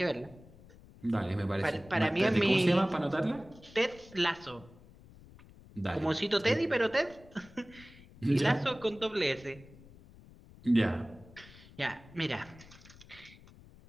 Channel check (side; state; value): left; noise; rumble, 22 dB below the sound